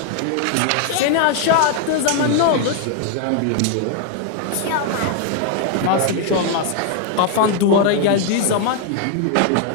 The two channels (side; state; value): both; different; correlation 0.00